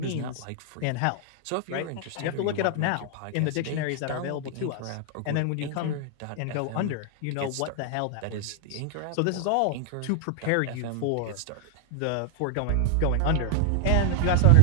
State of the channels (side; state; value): both; different; correlation 0.00